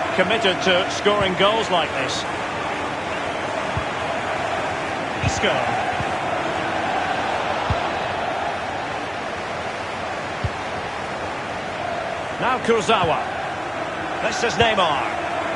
committed to scoring goals like this. Isco. Now Kurzawa. This is Neymar.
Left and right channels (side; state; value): both; identical; correlation 1.00